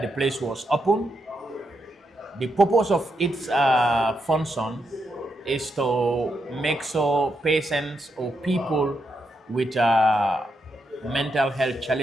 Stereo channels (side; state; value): both; normal; correlation 0.82